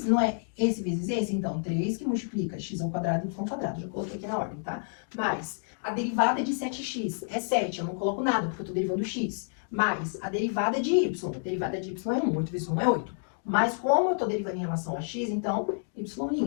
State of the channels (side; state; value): right; silent; 58 dB below the other